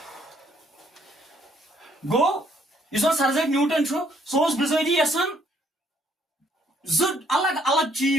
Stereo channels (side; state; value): both; normal; correlation 0.66